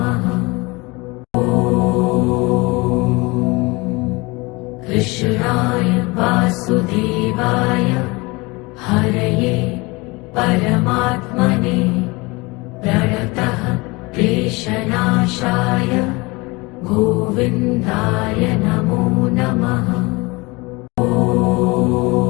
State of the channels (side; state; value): right; quieter; 24.8 dB